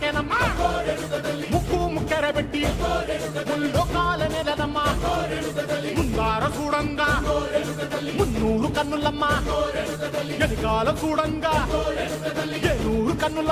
ముక్కు ముక్కెర పెట్టి ముల్లోకాల నెలనమ్మా ముందార చూడంగా మున్నూరు కన్నులమ్మా వెనకాల చూడంగా ఏనూరు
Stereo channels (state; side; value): identical; both; correlation 1.00